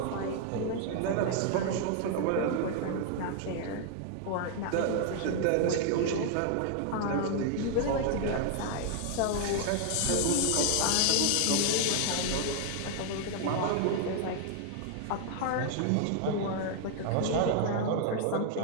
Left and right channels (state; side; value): different; both; correlation 0.00